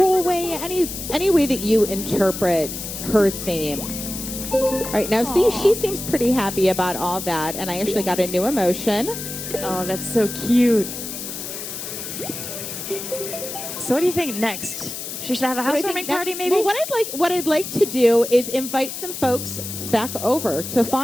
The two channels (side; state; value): left; noise; hiss, 7 dB below the sound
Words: way, any way that you interpret her theme. All right, now see, she seems pretty happy about all that, and I actually got a new emotion. Oh, that's so cute. So what do you think next? She should have a housewarming party, maybe? Well, what I'd like to do is invite some folks back over to